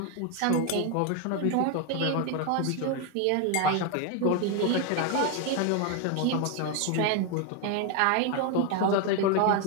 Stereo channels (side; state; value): both; different; correlation 0.01